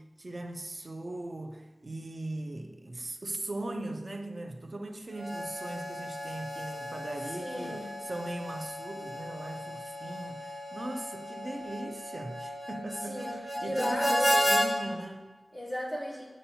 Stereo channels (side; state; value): both; normal; correlation 0.95